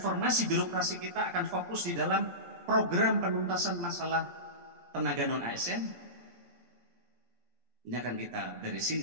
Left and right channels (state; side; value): late; left; 17 ms